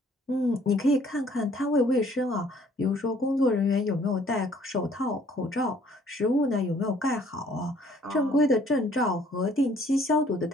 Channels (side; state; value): both; normal; correlation 0.59